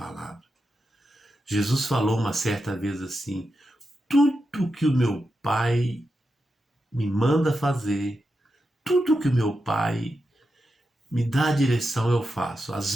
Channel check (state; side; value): normal; both; correlation 0.88